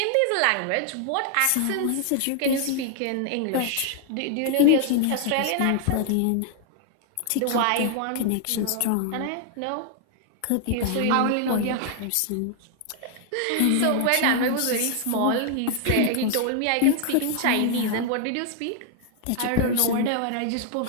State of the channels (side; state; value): both; different; correlation 0.00